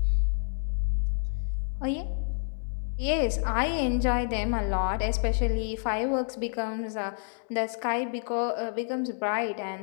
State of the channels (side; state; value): right; silent; 59 dB below the other